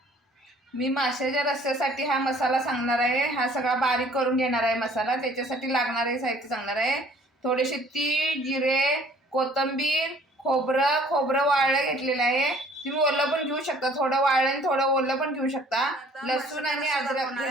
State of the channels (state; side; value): normal; both; correlation 0.55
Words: मी माशाच्या रस्स्यासाठी हा मसाला सांगणार आहे. हा सगळा बारीक करून घेणार आहे मसाला. त्याच्यासाठी लागणारे साहित्य सांगणार आहे. थोडेसे तीळ, जिरे, कोथिंबीर, खोबरं वाळलं घेतलेलं आहे. तुम्ही ओलं पण घेऊ शकता, थोडं वाळलं आणि थोडं ओलं पण घेऊ शकता. लसूण आणि अद्रक